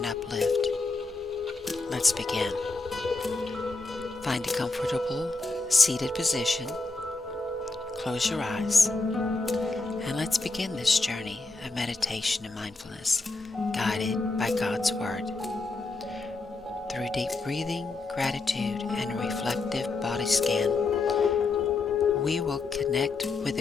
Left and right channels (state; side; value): quieter; right; 3.5 dB